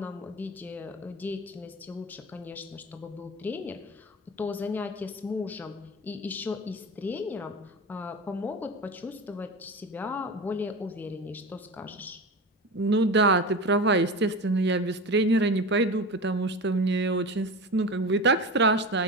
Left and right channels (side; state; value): both; normal; correlation 0.27